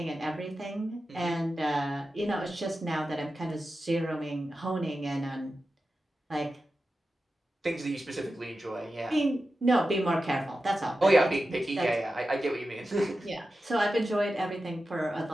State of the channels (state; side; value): normal; both; correlation 0.92